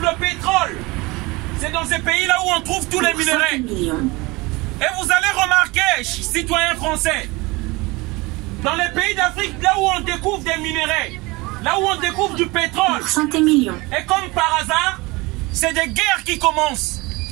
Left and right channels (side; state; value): left; quieter; 23.7 dB